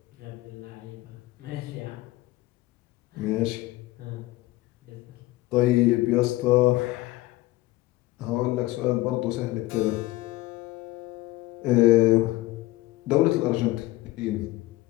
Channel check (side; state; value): right; quieter; 18.0 dB